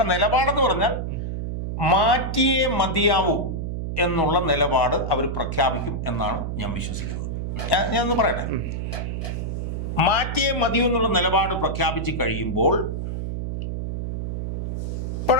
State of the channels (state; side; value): noise; right; hum, 3 dB below the sound